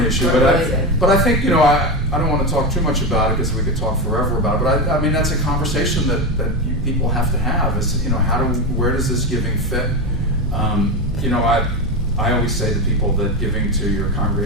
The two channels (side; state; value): both; normal; correlation 0.16